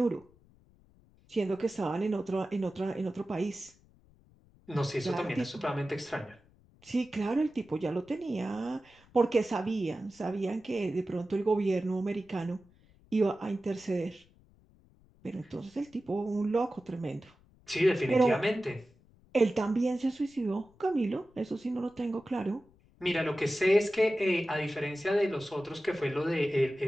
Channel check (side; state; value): left; noise; rumble, 29 dB below the sound